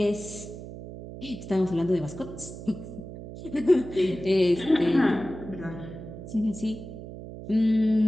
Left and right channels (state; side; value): noise; right; hum, 12 dB below the sound